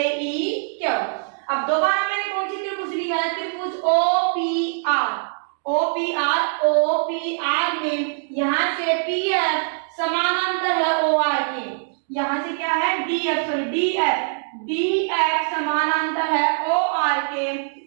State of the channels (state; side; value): silent; left; digital silence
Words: EQ। अब दोबारा मैंने कौन सी त्रिभुज लिया है, त्रिभुज OPR में यहां से PF समानांतर है OR के, यहां से क्या है DF समानांतर है OR के।